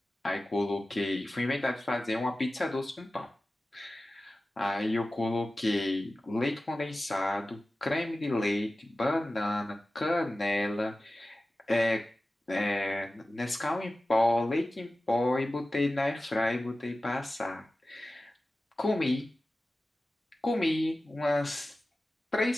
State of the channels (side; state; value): both; normal; correlation 0.95